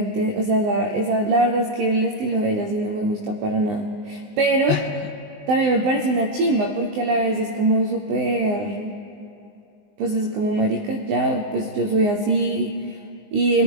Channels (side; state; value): left; late; 19 ms